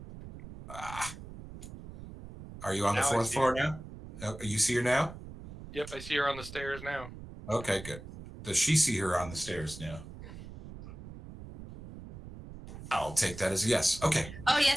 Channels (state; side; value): noise; right; rumble, 13 dB below the sound